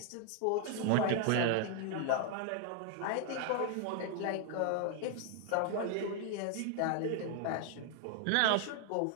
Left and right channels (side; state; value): both; different; correlation 0.00